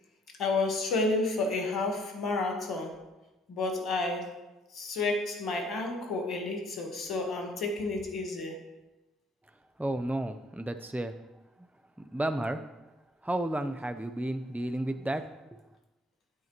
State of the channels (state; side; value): normal; both; correlation 0.62